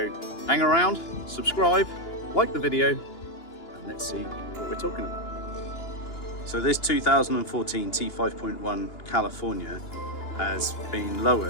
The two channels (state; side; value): late; right; 2.9 ms